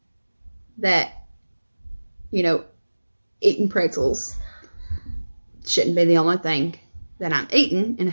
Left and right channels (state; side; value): inverted; both; correlation -1.00